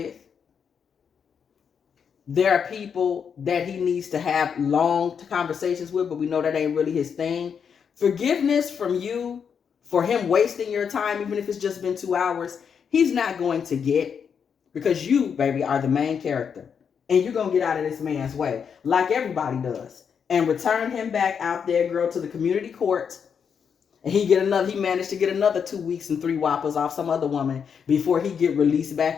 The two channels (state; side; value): quieter; right; 7.0 dB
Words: There are people that he needs to have long conversations with, but we know that ain't really his thing. Forgiveness from you for him wasting your time, even if it's just been 2 hours, he's not going to get, because you, baby, are the main character. And you're going to get out of this man's way, like everybody does, and return him back out there, girl, to the community court. And he managed to get another 2 weeks and 3 whoppers off some other woman before he get released back